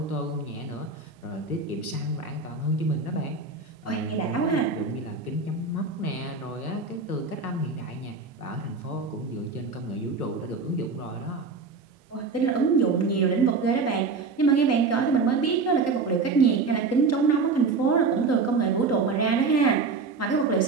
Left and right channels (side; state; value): left; quieter; 4.4 dB